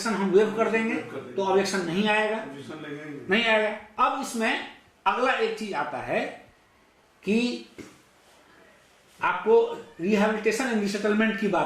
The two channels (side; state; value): both; identical; correlation 1.00